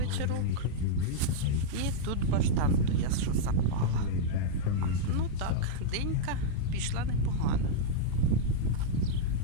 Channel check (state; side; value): different; both; correlation -0.02